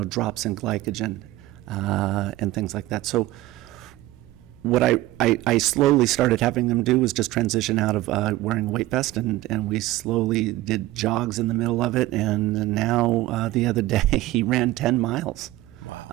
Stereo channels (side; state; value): left; quieter; 16.7 dB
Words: drops in glycogen and things like that. So what I slowly started having them do was just transition out of wearing a weight vest, and we slowly did jogs in the middle of it, and now the other day he ran 10 miles.